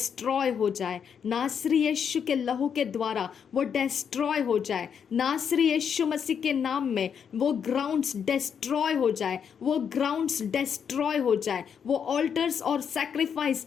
हो जाए नासरी यीशु के लहू के द्वारा, वो डिस्ट्रॉय हो जाए नासरी यीशु मसीह के नाम में। वो ग्राउंड्स डिस्ट्रॉय हो जाए, वो ग्राउंड्स डिस्ट्रॉय हो जाए, वो ऑल्टर्स और सैक्रिफाइस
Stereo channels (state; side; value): quieter; right; 7.4 dB